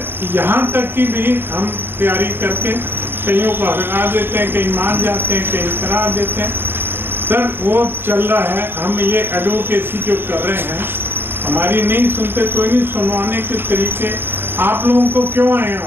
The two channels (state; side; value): late; left; 0.10 ms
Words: यहाँ तक की भी हम तैयारी करके कईयों को हटा देते हैं, कहीं मान जाते हैं, कहीं करा देते हैं। सर वो चल रहा है, हम ये एडवोकेसी जो कर रहे हैं, हमारी नहीं सुनते, कोई नहीं सुनवाने के तरीके। आप लोगों को क्यों आए